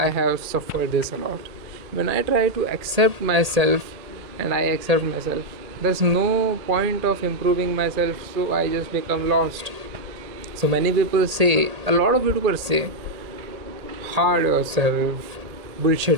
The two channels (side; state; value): left; late; 1.8 ms